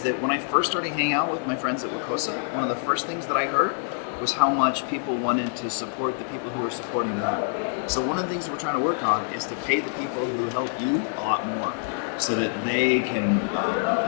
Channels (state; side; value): silent; right; 61 dB below the other